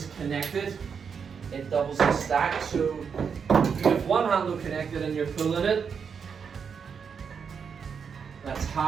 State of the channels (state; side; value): quieter; left; 6.4 dB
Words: connected, it doubles the stack. So you have one handle connected and you're pulling it, that's